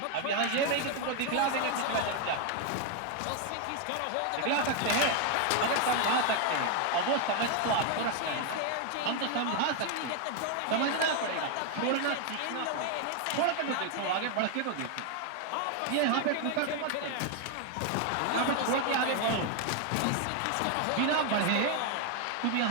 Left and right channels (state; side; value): different; both; correlation 0.01